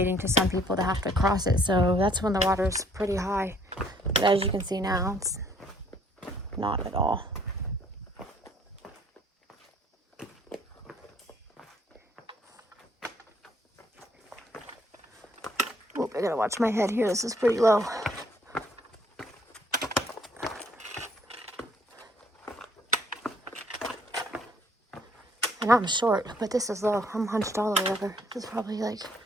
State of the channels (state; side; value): normal; both; correlation 0.63